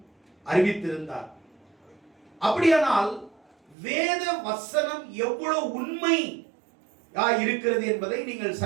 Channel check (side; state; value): left; drops out; at 3.8 s